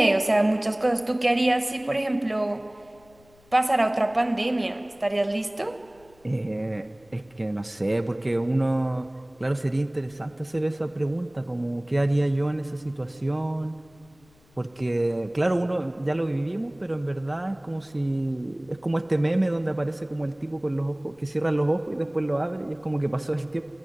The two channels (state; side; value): noise; left; rumble, 29 dB below the sound